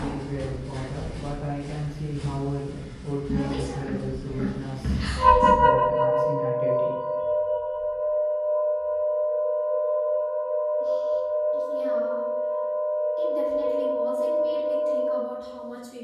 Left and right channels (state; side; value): identical; both; correlation 1.00